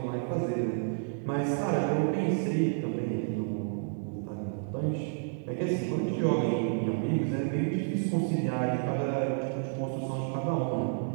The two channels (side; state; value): left; silent; digital silence